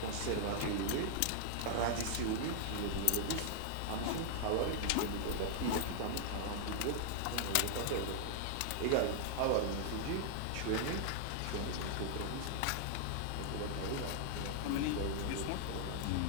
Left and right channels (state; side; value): different; both; correlation 0.00